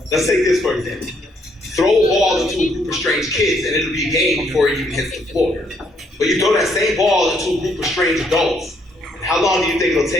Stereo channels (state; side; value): normal; both; correlation 0.70